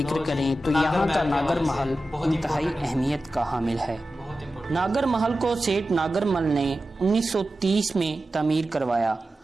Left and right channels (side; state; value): both; normal; correlation 0.93